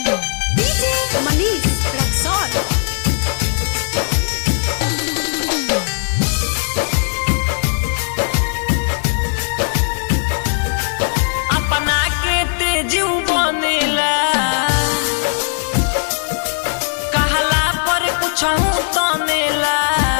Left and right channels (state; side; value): silent; right; 60 dB below the other